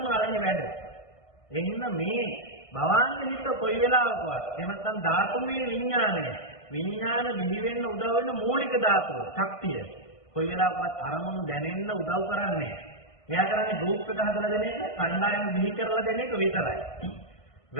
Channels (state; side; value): late; right; 1.5 ms